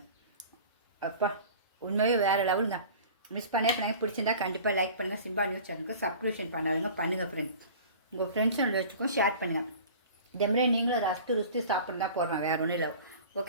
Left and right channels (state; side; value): inverted; both; correlation -0.41